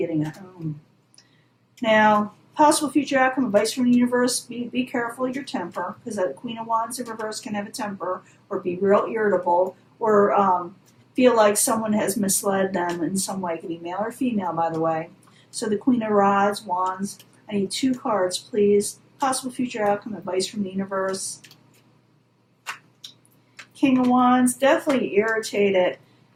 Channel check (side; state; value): both; identical; correlation 1.00